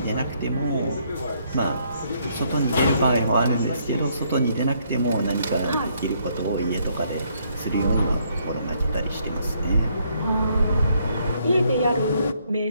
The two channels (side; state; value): both; inverted; correlation -0.70